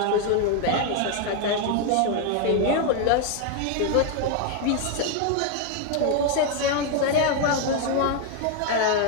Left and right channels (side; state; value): both; different; correlation 0.01